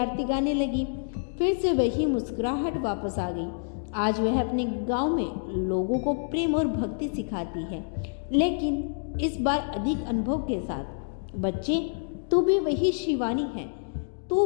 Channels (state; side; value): silent; right; digital silence